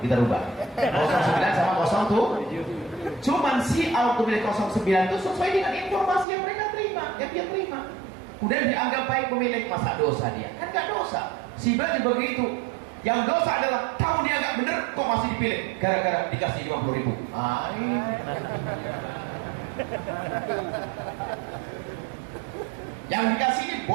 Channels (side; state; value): left; drops out; at 6.2 s